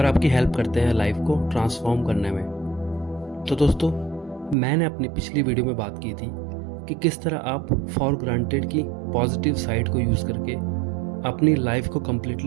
आपकी हेल्प करते हैं लाइफ को ट्रांसफॉर्म करने में। तो दोस्तों, मैंने अपनी पिछली वीडियो में बात की थी कि किस तरह आप फॉर ग्रांटेड की पॉजिटिव साइड को यूज़ करके अपनी लाइफ को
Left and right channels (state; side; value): drops out; left; at 4.5 s